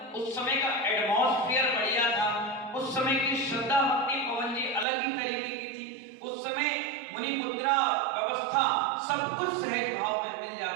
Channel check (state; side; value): drops out; left; at 4.9 s